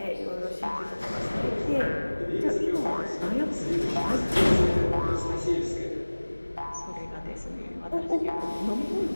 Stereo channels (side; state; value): both; inverted; correlation -1.00